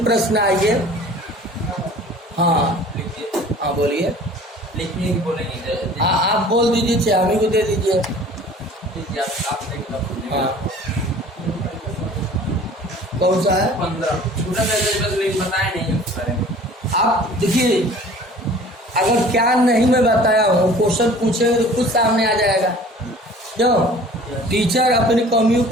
प्रश्न आइए। हाँ हाँ बोलिए। लिखिए बोलेंगे। आप बोल दीजिए, चाहे हमें को दे दीजिए। हाँ कौन सा है? 15 छोटा बस लेकिन बताया नहीं उस बारे में। आप देखिए, अगर क्या नहीं मैं बताया हूँ, क्वेश्चन पूछेंगे तो खुद सामने आ जाएगा। क्यों? टीचर अपनी कमियों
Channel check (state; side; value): normal; both; correlation 0.47